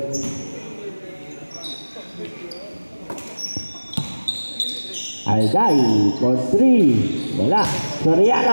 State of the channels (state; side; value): inverted; both; correlation -1.00